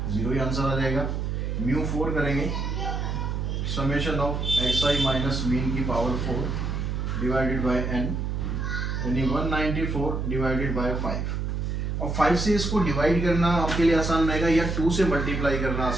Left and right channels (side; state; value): right; noise; hum, 2 dB below the sound